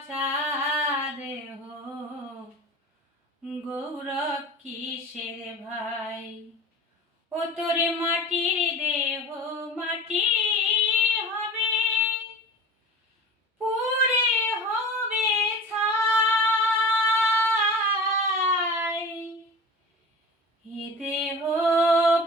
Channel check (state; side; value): normal; both; correlation 0.36